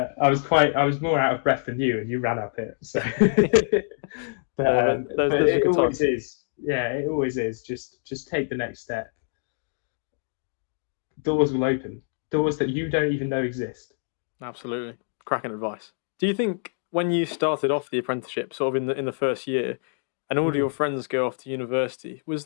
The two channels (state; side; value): silent; right; digital silence